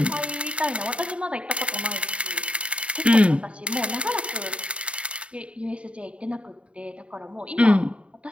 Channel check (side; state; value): left; late; 0.060 ms